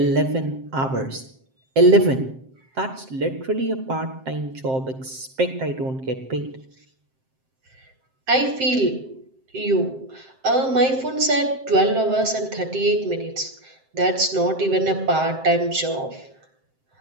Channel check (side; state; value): left; late; 7.6 ms